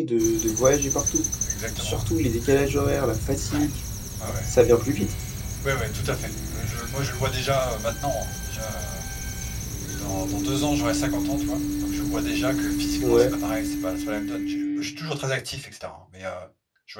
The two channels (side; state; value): both; identical; correlation 1.00